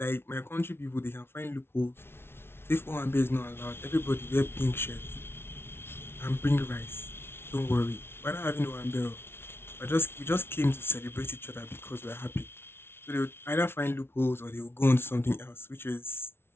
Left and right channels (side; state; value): right; late; 0.12 ms